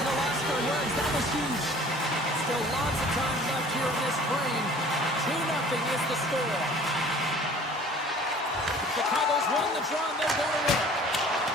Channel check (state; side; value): normal; both; correlation 0.49